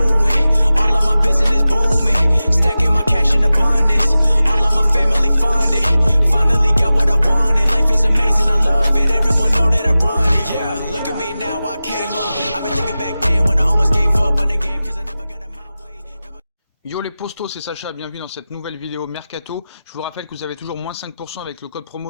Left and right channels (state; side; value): inverted; both; correlation -0.95